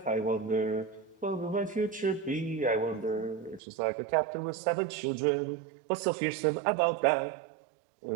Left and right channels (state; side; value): drops out; left; at 3.6 s